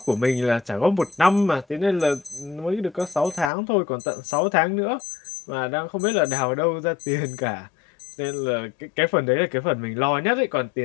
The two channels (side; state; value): right; drops out; at 3.5 s